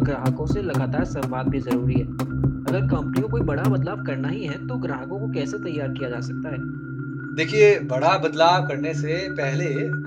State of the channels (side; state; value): both; identical; correlation 1.00